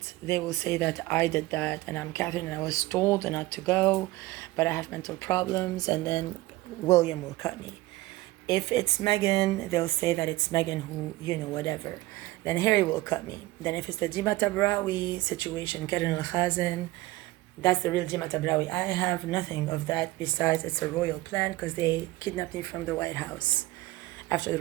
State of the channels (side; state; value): left; quieter; 18.8 dB